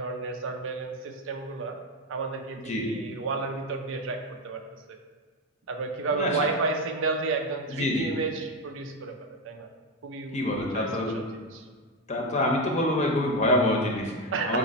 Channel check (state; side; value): normal; both; correlation 0.11